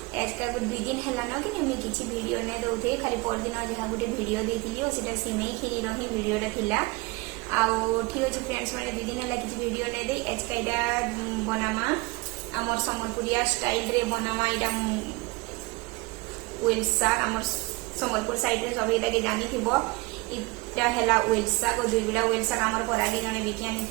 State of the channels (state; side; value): quieter; left; 24.9 dB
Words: आज का दुई दिन है ना कि मुझे किसी वीडियो नहीं दौथे खाली पर दिन जहाँ गोटे वीडियो देती और सीटा सिमई खीर ही वीडियोटा थिला ठीक अच्छे फ्रेंड्स मैंने दुई दिन है किसी वीडियो नहीं दे आज का यहाँ बनामा आमर सम्बलपुरिया स्टाइल रे बनामा यहाँ वेल साग आमर सम्बलपुर साइड रे सब ये जानी इटा है वेल साग और दुई बिड़ा वेल साग आमर परागे जने बिकी